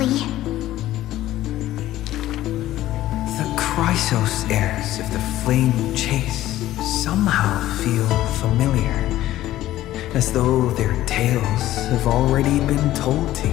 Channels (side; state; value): right; quieter; 14.5 dB